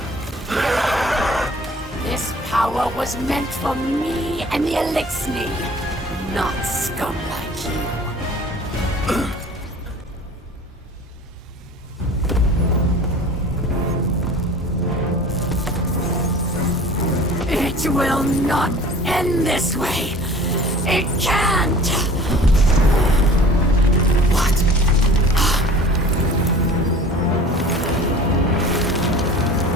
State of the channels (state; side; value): normal; both; correlation 0.44